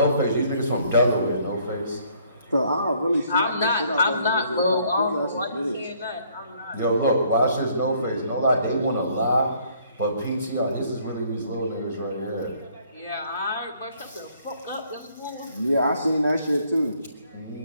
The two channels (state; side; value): inverted; both; correlation -0.63